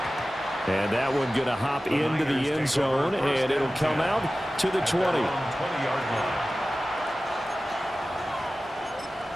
And that one going to hop into the end zone, and it'll come out to the 20. 20-yard line.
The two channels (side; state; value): both; normal; correlation 0.96